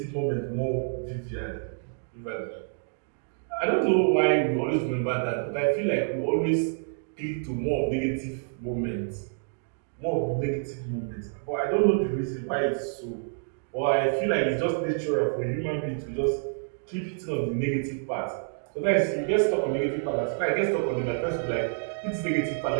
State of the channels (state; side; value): silent; left; digital silence